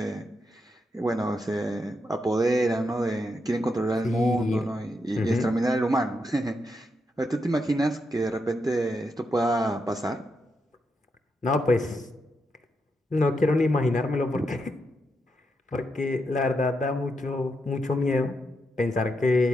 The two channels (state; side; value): normal; both; correlation 0.83